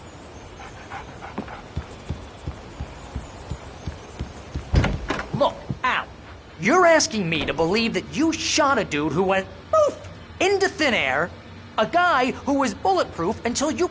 Look, Al, you're asking me to believe that you shot a dude who went poof into thin air, a guy who was bulletproof until you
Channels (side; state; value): both; identical; correlation 1.00